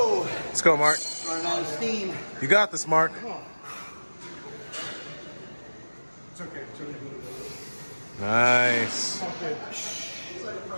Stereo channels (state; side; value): inverted; both; correlation -1.00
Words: Let's go, Mark. Running out of steam. You got this, Mark. It's okay. It's okay. Nice.